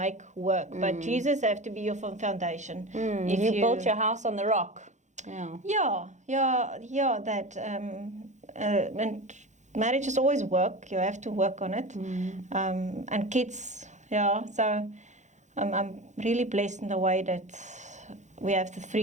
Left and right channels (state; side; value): late; left; 0.35 ms